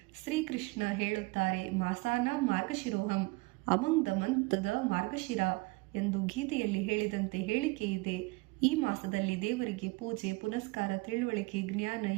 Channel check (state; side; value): quieter; left; 24.3 dB